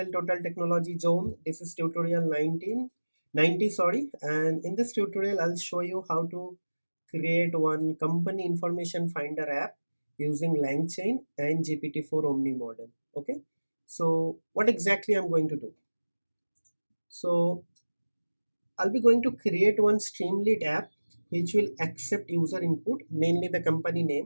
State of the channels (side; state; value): both; inverted; correlation -1.00